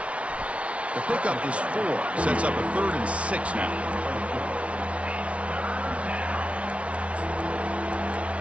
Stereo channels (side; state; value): left; late; 0.062 ms